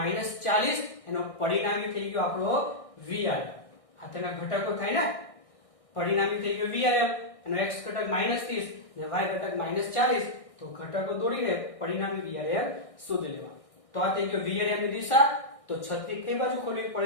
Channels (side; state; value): right; late; 1.6 ms